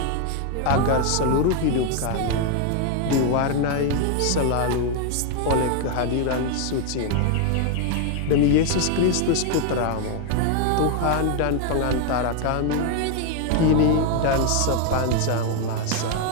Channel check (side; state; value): both; different; correlation 0.00